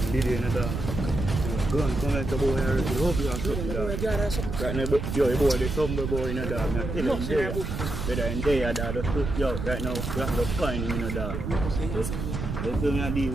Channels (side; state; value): right; noise; rumble, 4 dB below the sound